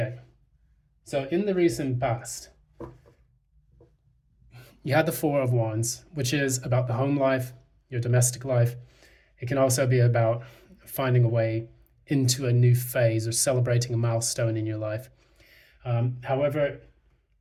so in the recent past, you had the 4 of Wands, which is about the home life, your domestic life. It can also be about finding a way into a new phase or celebrating a milestone in your life. However,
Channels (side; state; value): both; identical; correlation 1.00